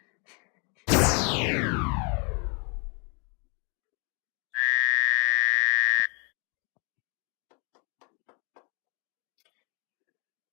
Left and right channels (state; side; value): quieter; right; 34.8 dB